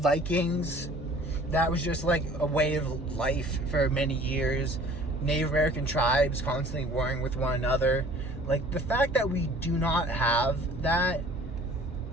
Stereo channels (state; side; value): normal; both; correlation 0.50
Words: that was just, like, a way of life for many years. Native American tribes constantly warring with one another. Like, the fact that we do not have that